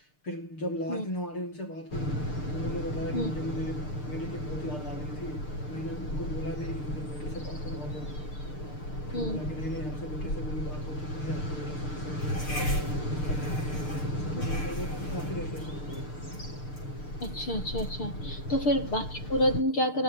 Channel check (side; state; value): right; late; 6.7 ms